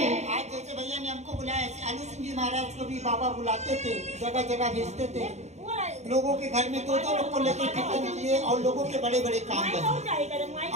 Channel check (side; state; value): left; late; 0.33 ms